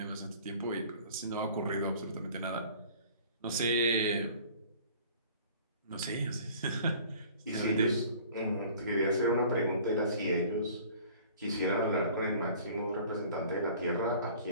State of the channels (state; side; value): inverted; both; correlation -0.49